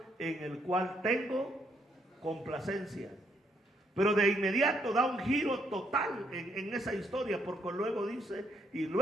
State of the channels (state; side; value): normal; both; correlation 0.73